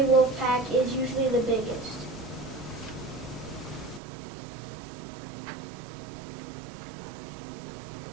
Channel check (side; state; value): left; drops out; at 4.0 s